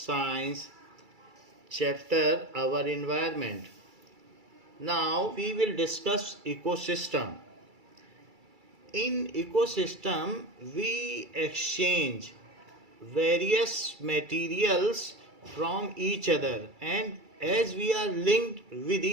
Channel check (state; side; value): late; left; 2.3 ms